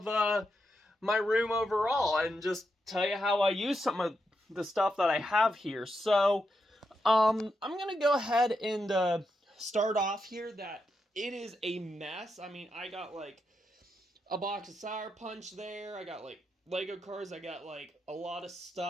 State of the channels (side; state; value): both; normal; correlation 0.84